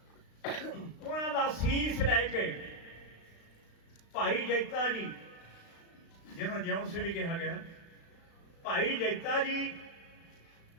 उन्हां दा सीस लैके भाई जैता जी, जिन्होंने जिउण से भी कहा गया, भाई जैता जी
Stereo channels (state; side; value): late; right; 36 ms